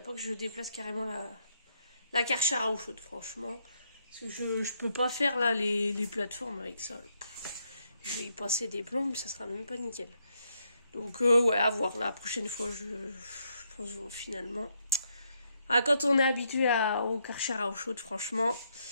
pas que je déplace carrément la Karcher à eau chaude, franchement. Parce que je peux pas faire là les plateformes avec ça. Je vais y passer des plombs, ça sera même pas nickel. Donc ouais, à voir la prochaine fois, je pense finalement. Ah, quand on est habitué au Karcher à eau chaude, franchement,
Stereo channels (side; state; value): both; inverted; correlation -0.76